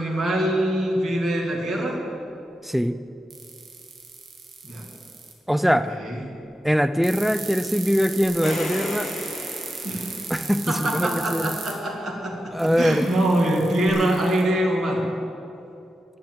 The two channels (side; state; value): both; normal; correlation 0.90